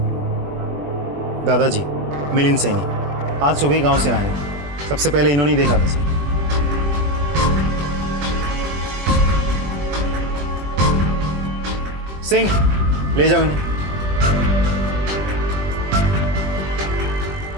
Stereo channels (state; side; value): late; left; 21 ms